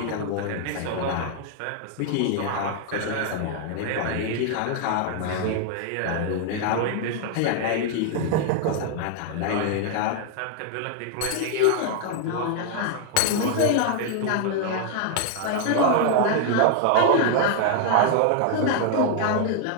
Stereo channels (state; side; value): different; both; correlation 0.00